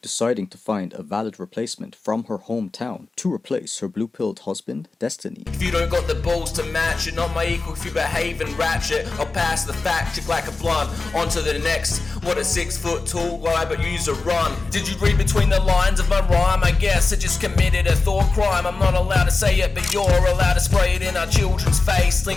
to find a valid replacement from her hometown to replace her blue-pilled husband, Destiny. If you don't got the balls to match it, not my equal if you behave and ratchet, I'll pass the fact check like a blunt, on to the next. What a 6 foot tall guy, but use a run. Did you read between the lines of my rhyme? I guess I just committed a thought crime. I'm not allowed to say it, but you're allowed to spray it in our children's face.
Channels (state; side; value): quieter; right; 3.8 dB